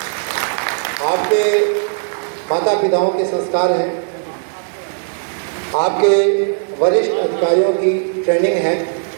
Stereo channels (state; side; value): silent; left; digital silence